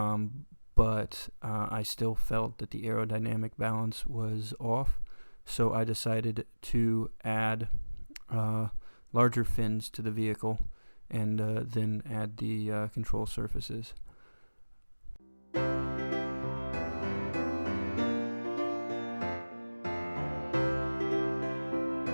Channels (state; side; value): inverted; both; correlation -1.00